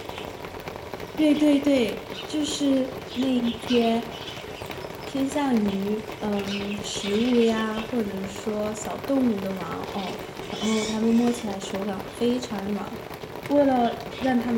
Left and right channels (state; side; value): identical; both; correlation 1.00